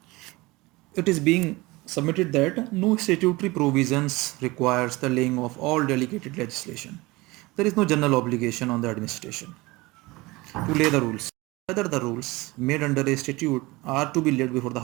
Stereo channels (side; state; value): left; quieter; 22.0 dB